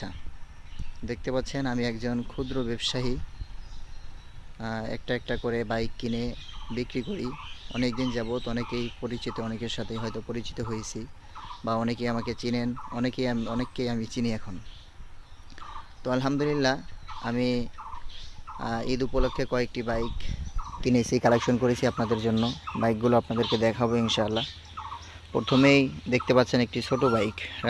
দেখতে পাচ্ছেন আমি একজন ক্ষুদ্র ব্যবসায়ী, একটা একটা করে বাইক কিনে বিক্রি করি। অনেক দিন যাবৎ অনেকেই পরিচিত, অনেকের সাথে হয়তো পরিচিত হয়েছি বা অনেকেই আমাকে চিনেন, অনেককেই আমি চিনি এখন। তো আলহামদুলিল্লাহ আমি ঈদ উপলক্ষে কয়েকটি বাইক কিনেছি, কালেকশন করেছি আপনাদের জন্য। বাইকগুলো আপনাদেরকে দেখাবো ইনশাআল্লাহ। প্রথমেই দেখতে পাচ্ছেন একটি ছোট বাইক,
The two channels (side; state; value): both; identical; correlation 1.00